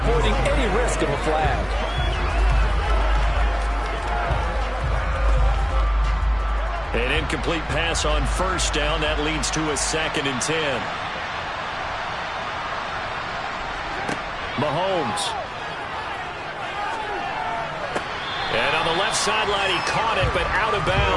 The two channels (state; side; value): identical; both; correlation 1.00